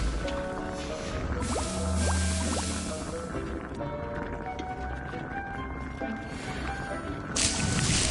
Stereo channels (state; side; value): identical; both; correlation 1.00